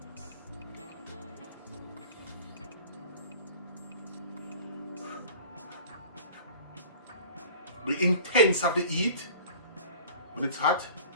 The intense of the heat, when it's hot,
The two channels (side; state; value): both; inverted; correlation -0.45